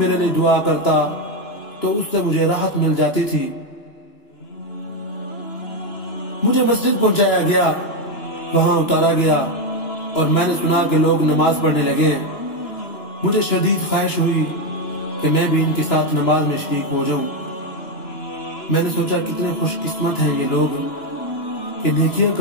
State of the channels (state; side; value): late; right; 2.9 ms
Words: لیے دعا کرتا تو اس سے مجھے راحت مل جاتی تھی۔ مجھے مسجد پہنچایا گیا، وہاں اتارا گیا اور میں نے سنا کہ لوگ نماز پڑھنے لگے ہیں۔ مجھے شدید خواہش ہوئی کہ میں بھی ان کے ساتھ نماز میں شریک ہو جاؤں۔ میں نے سوچا کتنے خوش قسمت ہیں یہ لوگ کہ نیکیاں